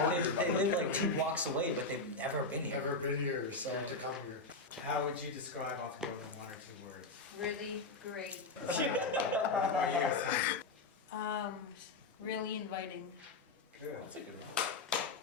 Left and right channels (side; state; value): right; quieter; 3.5 dB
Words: they live like 2 blocks away but they've never been here. Never been here, started to come here. How would you describe Off the Grill in 1 or 2 words? Really great. What about you, Sam? Really inviting. Good. That's a good